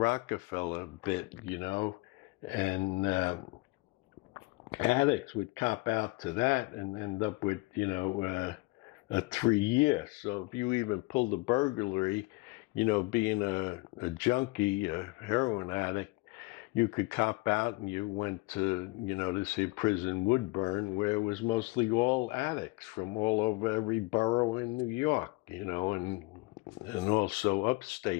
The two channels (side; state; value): right; quieter; 23.5 dB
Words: bit, and addicts would cop out to that and end up with, a 3 year. So if you even pulled a burglary, being a junkie, a heroin addict, you could cop out and you went to, this prison Woodburn, where it was mostly all addicts from all over every borough in New York, and also